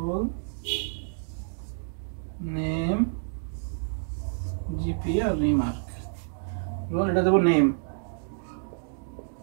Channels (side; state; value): left; silent; digital silence